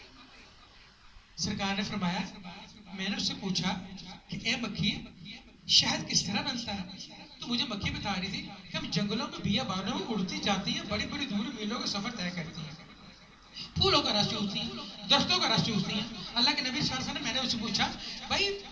سرکار نے فرمایا میں نے اس سے پوچھا کہ اے مکھی شہد کس طرح بنتا ہے؟ تو مجھے مکھی بتا رہی تھی کہ ہم جنگلوں میں بیابانوں میں اڑتی جاتی ہیں، بڑی بڑی دور میلوں کا سفر طے کرتی ہیں، پھولوں کا رس چوستی ہیں، درختوں کا رس چوستی ہیں۔ اللہ کے نبی صلی اللہ علیہ وسلم نے میں نے اس سے پوچھا بھائی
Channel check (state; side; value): identical; both; correlation 1.00